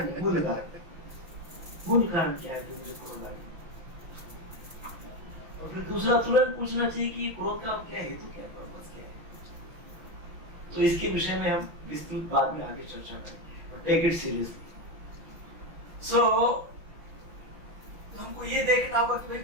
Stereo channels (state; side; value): late; left; 6.0 ms